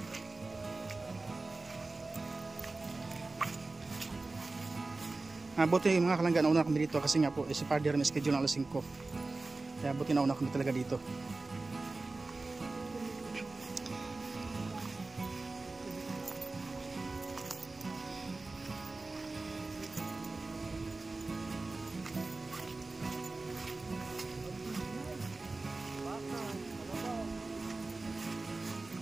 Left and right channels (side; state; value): left; quieter; 3.4 dB